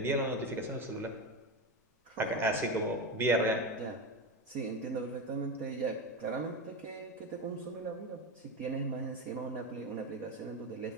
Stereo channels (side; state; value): both; normal; correlation 0.19